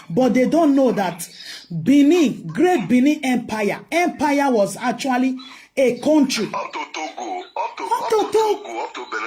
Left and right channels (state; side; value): identical; both; correlation 1.00